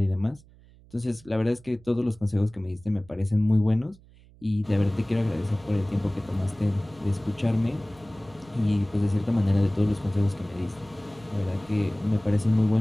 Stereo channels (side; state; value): right; noise; hum, 25 dB below the sound